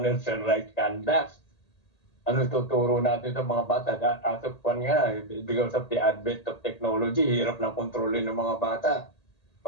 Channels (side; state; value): right; late; 1.8 ms